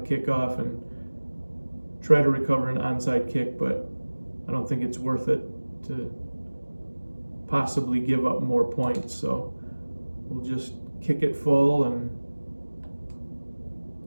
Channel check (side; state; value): both; inverted; correlation -1.00